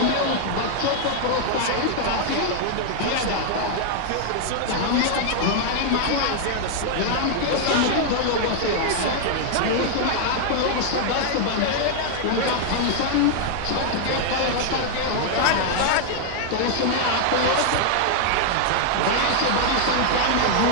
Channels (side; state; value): both; different; correlation 0.00